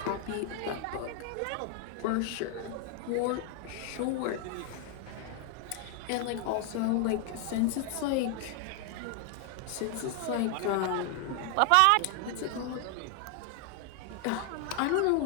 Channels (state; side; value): different; both; correlation 0.00